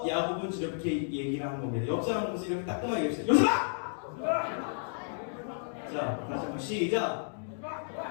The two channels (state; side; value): silent; right; digital silence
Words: 야곱은 이렇게 얘기를 하는 겁니다. 옆 사람 보면서 이렇게 따끔하게 얘기해주세요. 요셉아! 자, 다시 한번 시작.